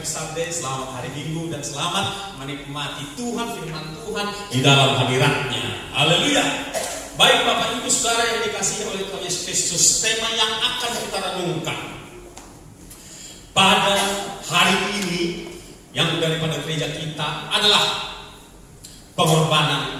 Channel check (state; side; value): identical; both; correlation 1.00